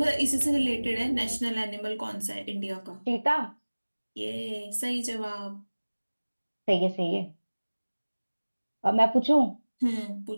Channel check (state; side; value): inverted; both; correlation -1.00